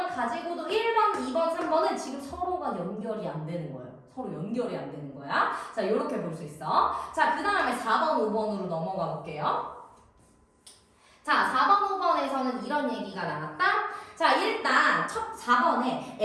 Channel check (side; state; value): both; identical; correlation 1.00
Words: 가지고도 1번, 2번, 3번은 지금 서로가 연결이 안 되는 거예요. 서로 연결이 안 되는 거야. 자, 이렇게 볼 수 있어. 자, 그 다음에 4번, 5번으로 넘어가 볼게요. 자, 4번, 5번에서는 이런 얘기가 나왔다. 자, 일단 첫 4번에